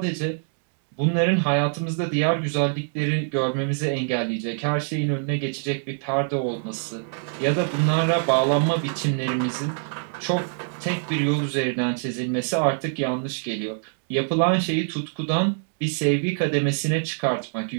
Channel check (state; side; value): silent; left; digital silence